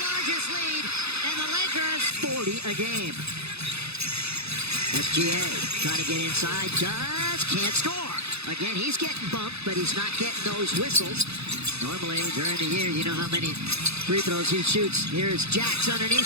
lead, and the Lakers 40 a game. SGA trying to get inside, can't score. Again, he's getting bumped, but he's not getting those whistles. Normally, during the year, you know how many free throws he shoots. Here's Jax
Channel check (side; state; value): left; late; 0.79 ms